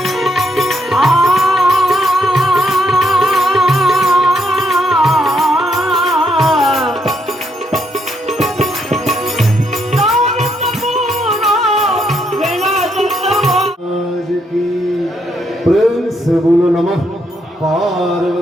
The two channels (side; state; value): both; normal; correlation 0.75